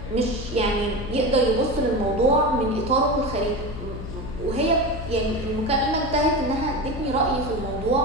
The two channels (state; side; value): noise; left; hum, 9 dB below the sound